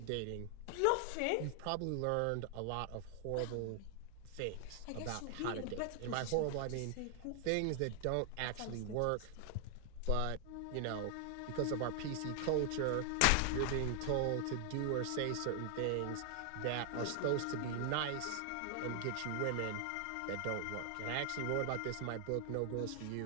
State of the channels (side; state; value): both; different; correlation 0.00